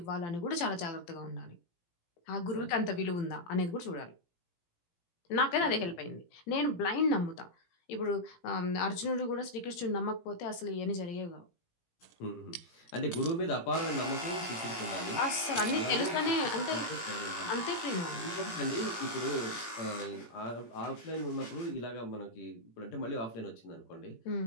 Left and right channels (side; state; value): right; late; 17 ms